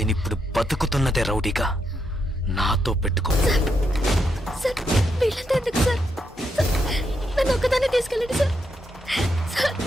బతుకుతున్నదే రౌడీగా. నాతో పెట్టుకో. సార్ వీళ్ళంతా ఎందుకు సార్? సార్, నన్ను ఒక్కదాన్ని తీసుకెళ్ళండి సార్. సార్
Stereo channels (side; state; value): both; normal; correlation 0.81